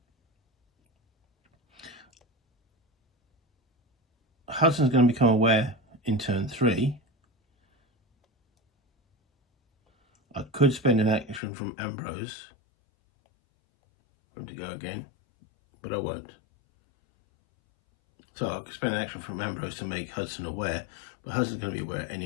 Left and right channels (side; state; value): right; drops out; at 11.4 s